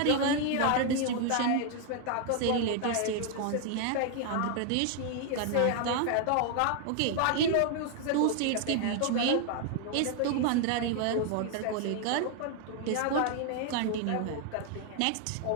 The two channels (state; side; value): different; both; correlation 0.00